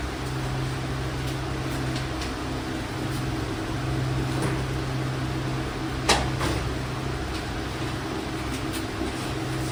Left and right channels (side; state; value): both; identical; correlation 1.00